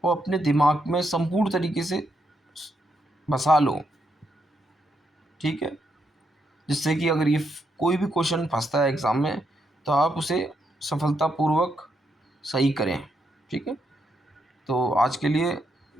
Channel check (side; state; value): both; normal; correlation 0.79